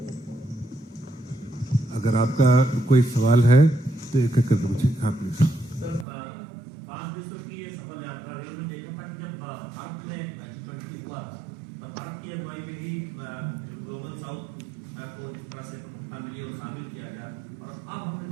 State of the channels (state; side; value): drops out; left; at 6.1 s